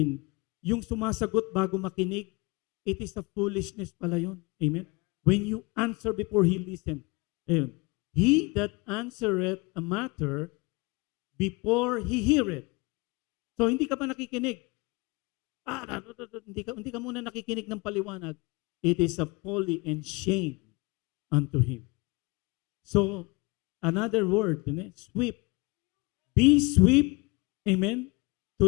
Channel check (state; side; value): quieter; right; 25.8 dB